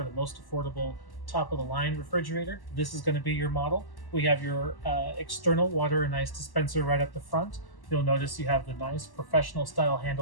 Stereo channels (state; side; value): late; right; 1.1 ms